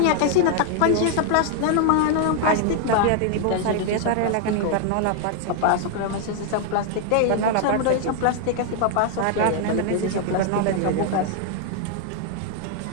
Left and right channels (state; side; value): different; both; correlation 0.00